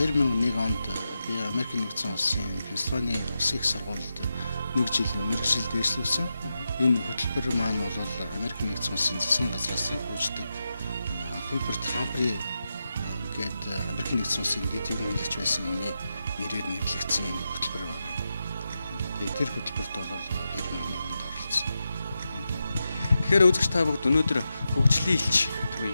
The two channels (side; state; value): both; inverted; correlation -0.89